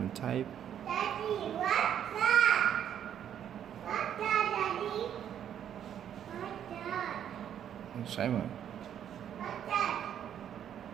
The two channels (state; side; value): quieter; left; 9.6 dB